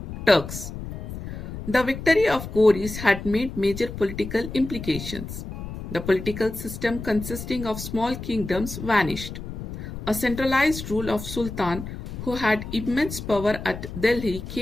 Turks. The victory of Ghouris had made major political implications. The political system consisting of small kingdoms vanished. A centralized rule of Sultan who had immense power at Delhi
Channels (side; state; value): left; noise; rumble, 9 dB below the sound